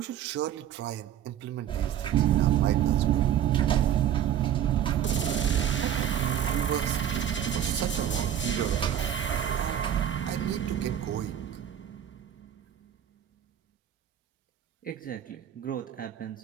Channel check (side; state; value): left; quieter; 10.0 dB